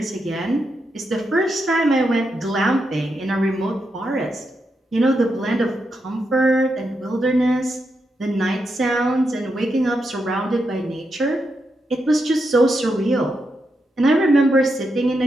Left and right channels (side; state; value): both; normal; correlation 0.84